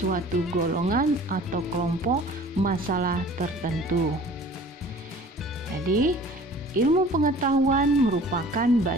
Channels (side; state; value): both; normal; correlation 0.47